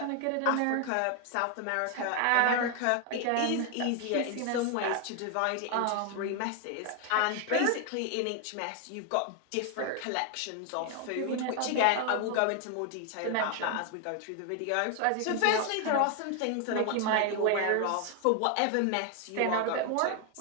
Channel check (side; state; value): both; different; correlation 0.01